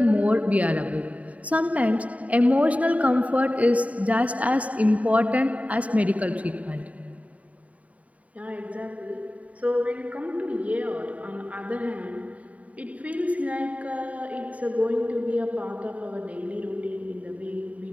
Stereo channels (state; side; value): late; left; 0.069 ms